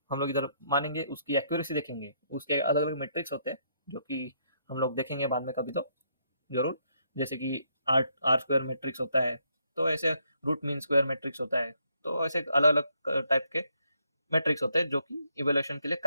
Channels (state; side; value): inverted; both; correlation -0.74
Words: हम लोग इधर मानेंगे, उसकी एक्यूरेसी देखेंगे। उसके अलग अलग मेट्रिक्स होते हैं जो कि हम लोग देखेंगे बाद में कभी तो जरूर। जैसे कि आर आर स्क्वायर मैट्रिक्स होता है, तो ऐसे रूट मीन स्क्वायर मैट्रिक्स होता है। तो ऐसे अलग अलग टाइप के मैट्रिक्स होते हैं जो कि इवेल्युएशन के लिए